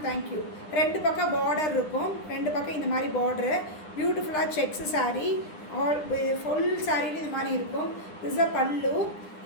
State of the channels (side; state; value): right; late; 9.9 ms